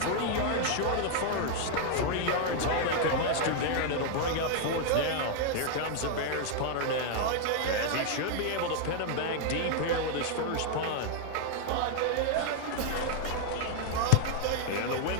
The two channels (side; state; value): both; different; correlation 0.00